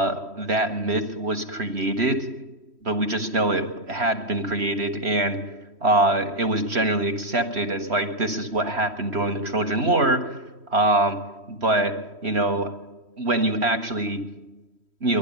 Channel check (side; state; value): left; late; 3.1 ms